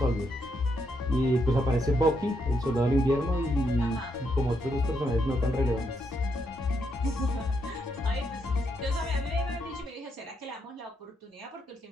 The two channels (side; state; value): both; normal; correlation 0.78